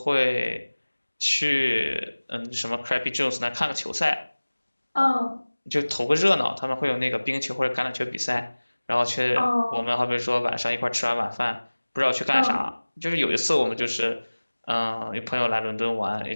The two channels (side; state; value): both; inverted; correlation -1.00